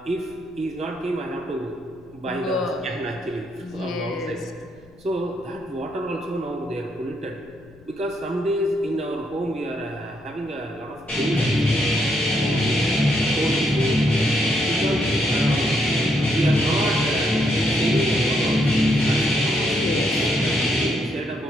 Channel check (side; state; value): left; noise; rumble, 25 dB below the sound